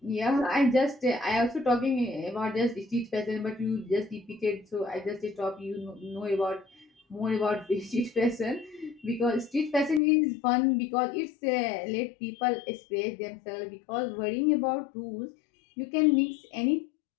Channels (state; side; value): drops out; right; at 10.0 s